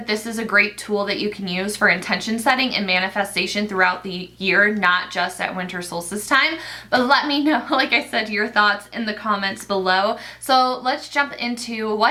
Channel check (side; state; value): both; identical; correlation 1.00